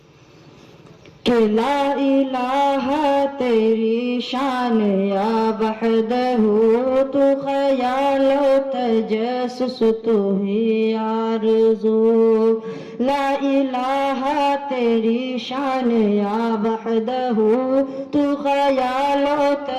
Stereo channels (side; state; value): both; identical; correlation 1.00